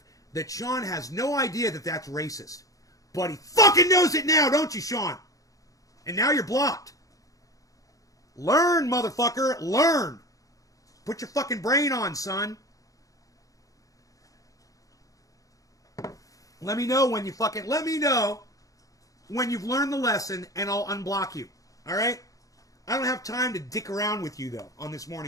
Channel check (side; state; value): right; late; 0.17 ms